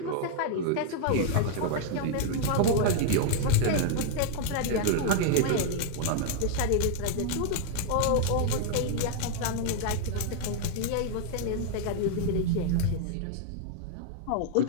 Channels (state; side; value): different; both; correlation 0.00